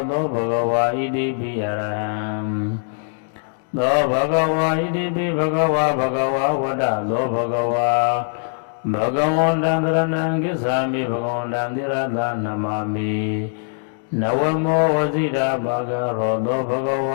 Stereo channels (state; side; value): silent; right; digital silence